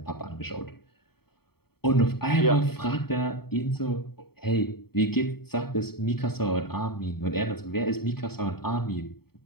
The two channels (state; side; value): late; right; 0.96 ms